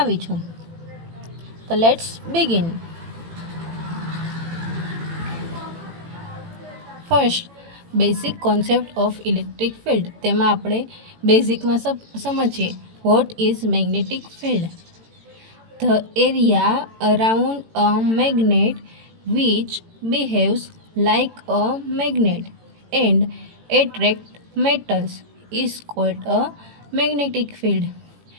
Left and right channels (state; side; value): late; left; 18 ms